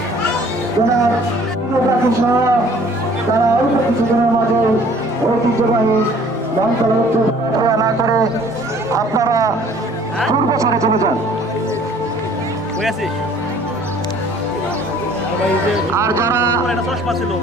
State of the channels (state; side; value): normal; both; correlation 0.54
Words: সহ তারা অল্প কিছুদিনের মাঝে ঐতিহ্যবাহী বনতলা না করে আপনারা পূর্ব সারে চলে যান। আর যারা